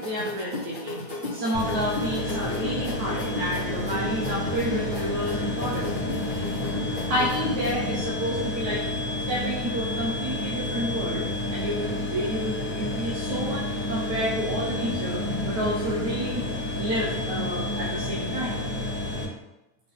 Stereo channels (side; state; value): left; late; 9.0 ms